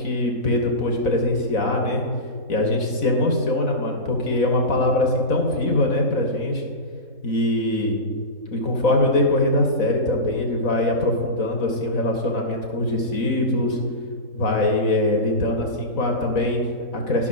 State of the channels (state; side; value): late; right; 4.0 ms